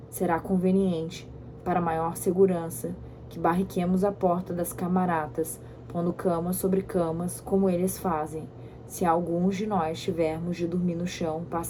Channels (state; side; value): identical; both; correlation 1.00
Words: Será conveniente, para maior segurança, que barriquemos a porta das camaratas, pondo camas sobre camas, como eles fazem. Se alguns de nós tivermos de dormir no chão,